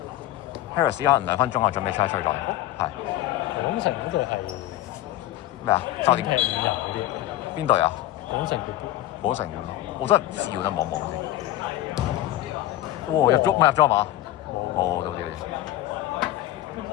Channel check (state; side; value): quieter; right; 14.3 dB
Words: 可能2分鐘後準備出咗。係。廣城嗰隊係咩啊？9點踢5人嗰啲。邊隊啊？廣城廣城，我真係唔知喎，等望望先。哇！入咗係嘛？冇，到啲。